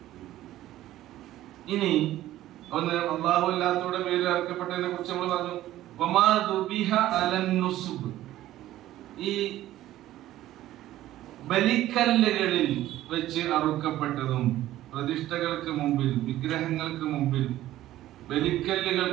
ഇനി ഒന്ന് അല്ലാഹു അല്ലാത്തവരുടെ പേരിൽ അറുക്കപ്പെട്ടതിനെ കുറിച്ച് നമ്മൾ പറഞ്ഞു. വമാ ദുബിഹ അലൻ നുസുബ്, ഈ ബലിക്കല്ലുകളിൽ വെച്ച് അറുക്കപ്പെട്ടതും പ്രതിഷ്ഠകൾക്ക് മുമ്പിൽ, വിഗ്രഹങ്ങൾക്ക് മുമ്പിൽ,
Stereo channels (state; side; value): quieter; left; 14.3 dB